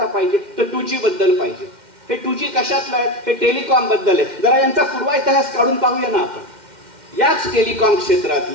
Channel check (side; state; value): left; late; 2.1 ms